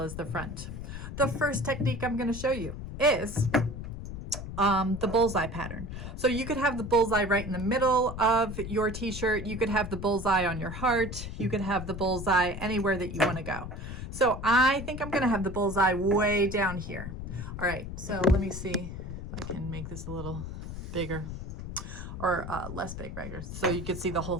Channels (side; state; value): left; noise; rumble, 8 dB below the sound